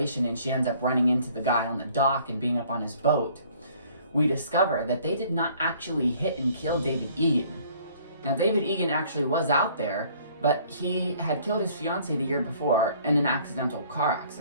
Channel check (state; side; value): inverted; both; correlation -0.57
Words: and she ends up running into the guy on the dock and being up on his boat, we discover that they did not actually hit and kill David Egan. Now, David Egan actually was out there, but he had killed his fiancée the year before in an accidental car